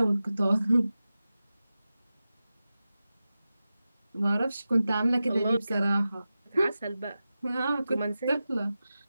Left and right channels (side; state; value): both; inverted; correlation -0.94